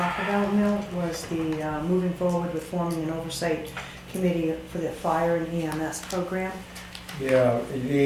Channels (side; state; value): both; identical; correlation 1.00